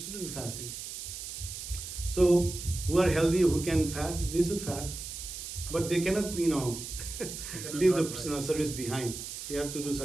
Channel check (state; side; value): noise; right; hiss, 8 dB below the sound